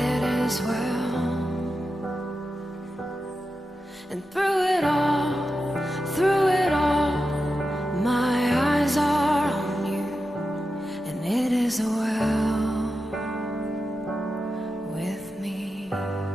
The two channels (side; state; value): both; normal; correlation 0.90